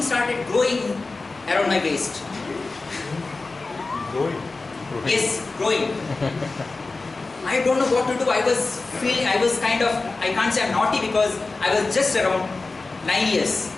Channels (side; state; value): right; quieter; 3.6 dB